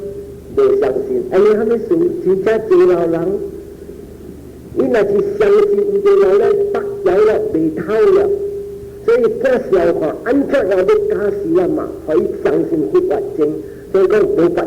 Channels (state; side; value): identical; both; correlation 1.00